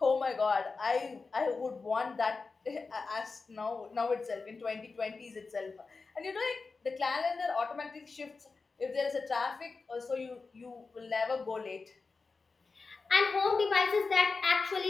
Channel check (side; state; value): right; quieter; 4.3 dB